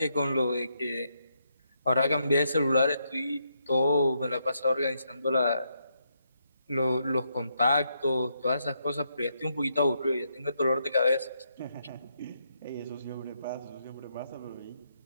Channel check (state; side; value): inverted; both; correlation -0.79